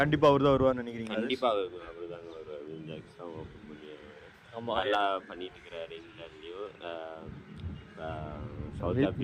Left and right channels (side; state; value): both; identical; correlation 1.00